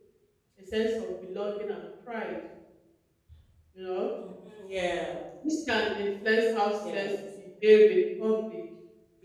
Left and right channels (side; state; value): both; identical; correlation 1.00